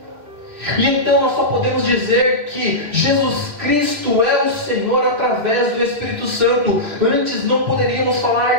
E então nós só podemos dizer que Jesus Cristo é o Senhor através do Espírito Santo. Antes não poderíamos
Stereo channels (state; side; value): late; left; 2.3 ms